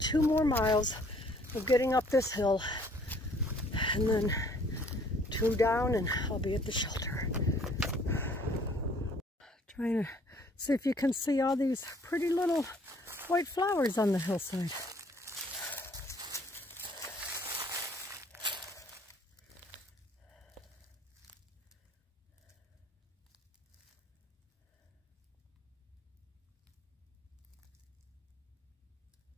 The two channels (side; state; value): both; normal; correlation 0.59